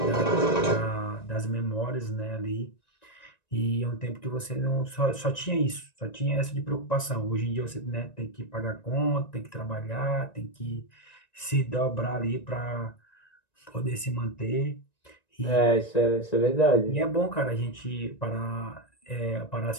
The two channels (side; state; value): right; late; 1.9 ms